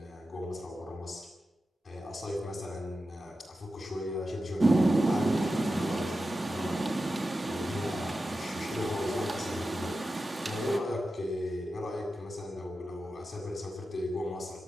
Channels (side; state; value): both; normal; correlation 0.92